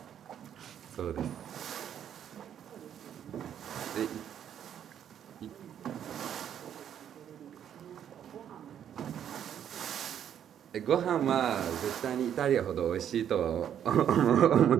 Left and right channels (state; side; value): quieter; left; 9.5 dB